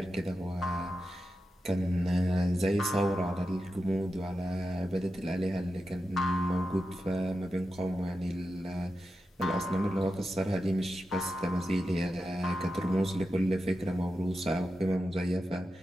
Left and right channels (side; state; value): both; normal; correlation 0.90